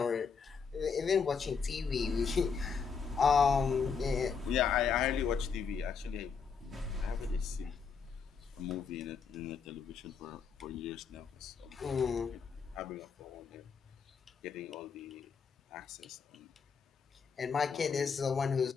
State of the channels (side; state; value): right; quieter; 5.9 dB